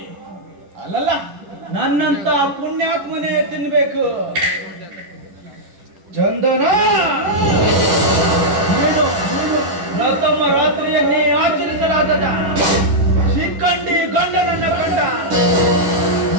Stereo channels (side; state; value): left; late; 10 ms